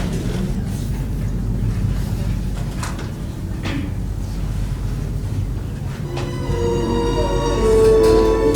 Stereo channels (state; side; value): identical; both; correlation 1.00